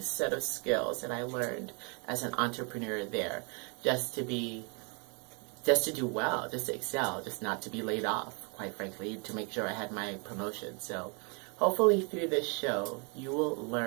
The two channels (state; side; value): quieter; left; 34.8 dB